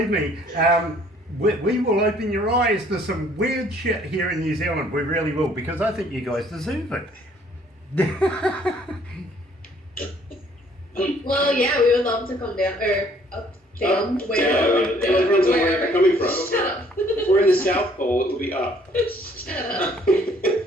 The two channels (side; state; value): both; normal; correlation 0.60